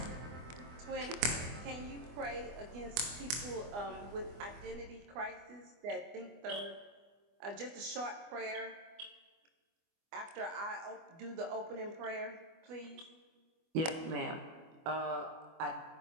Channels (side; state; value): left; late; 24 ms